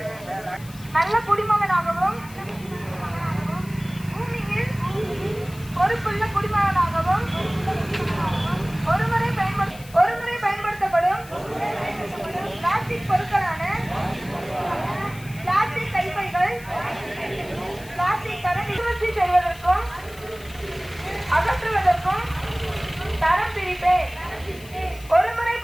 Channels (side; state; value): left; noise; hiss, 20 dB below the sound